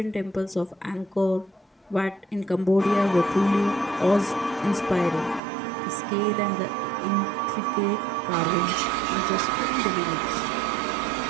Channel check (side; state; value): left; drops out; at 5.4 s